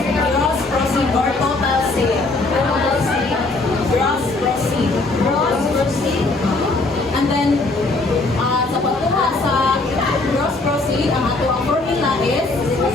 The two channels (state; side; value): quieter; right; 3.2 dB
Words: gross proceed or total sale. Gross proceed. Gross proceed. And then, sa pagkuha sa gross proceed, ang ato ang formula is